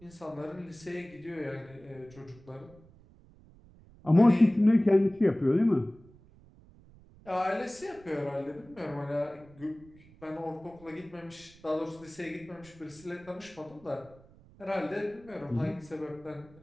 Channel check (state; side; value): noise; right; rumble, 25 dB below the sound